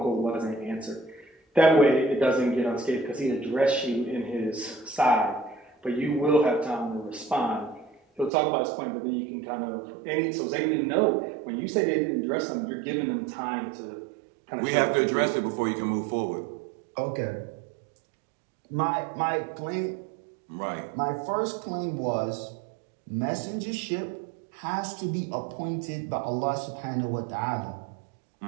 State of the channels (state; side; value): drops out; left; at 8.3 s